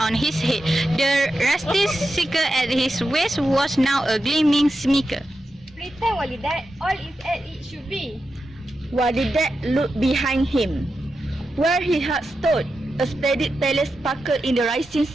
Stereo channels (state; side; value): normal; both; correlation 0.89